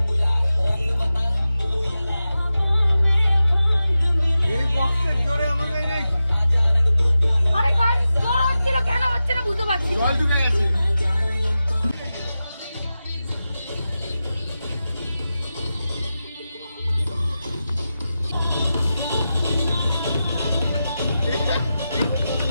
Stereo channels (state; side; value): inverted; both; correlation -0.92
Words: এই বক্সের জোরে আমাদের এই আরে গাড়ি জোর হচ্ছিল, কেন হচ্ছে না বুঝতে পারছি না। জল ঢুকে গেছে